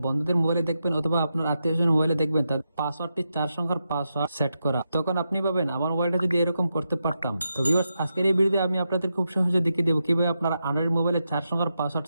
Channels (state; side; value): inverted; both; correlation -0.87